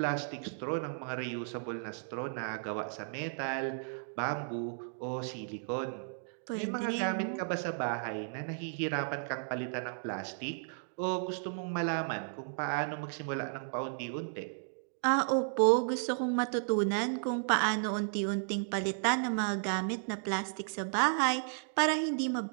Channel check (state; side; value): silent; left; digital silence